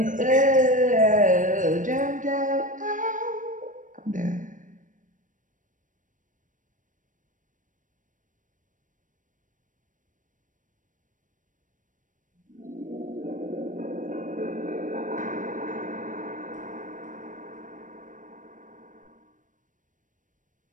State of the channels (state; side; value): late; left; 0.38 ms